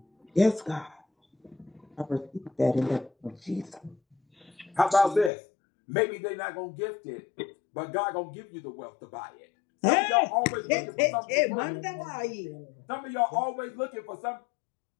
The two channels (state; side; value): drops out; right; at 5.3 s